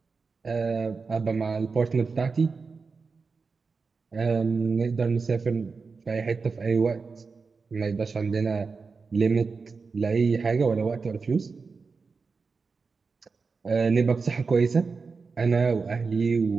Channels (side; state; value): left; quieter; 4.7 dB